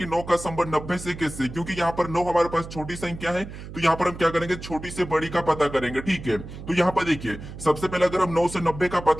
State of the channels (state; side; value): noise; right; hum, 12 dB below the sound